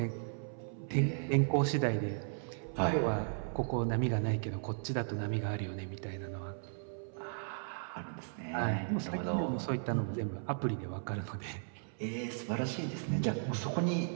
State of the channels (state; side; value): silent; left; 54 dB below the other